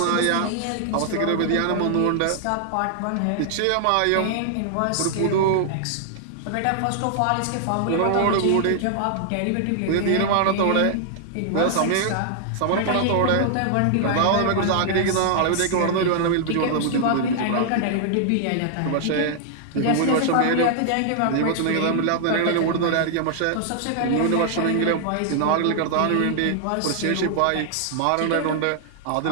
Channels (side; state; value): both; different; correlation 0.00